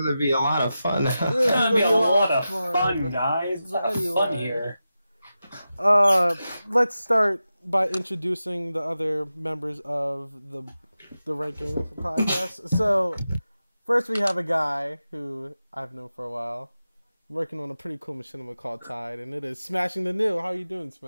to be a lot of fun. It's going to be a lot of fun, guys. A lot of fun here. Let's start by introducing the other members of the ranking podcast. So, first we have a guy who I've known for a while, working on a pretty cool machinima called Tide, and it is Smashingthenew. How you doing,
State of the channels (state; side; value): inverted; both; correlation -0.92